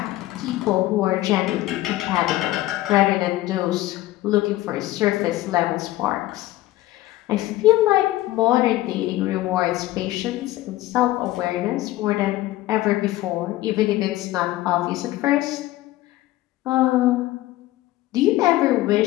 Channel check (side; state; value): right; quieter; 16.3 dB